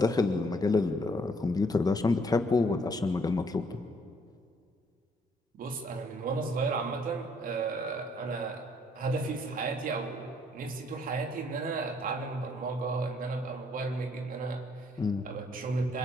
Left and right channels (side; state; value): both; normal; correlation 0.66